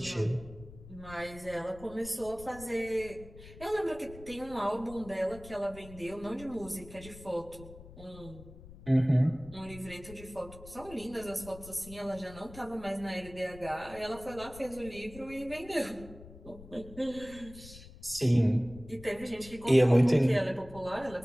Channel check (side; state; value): left; noise; rumble, 17 dB below the sound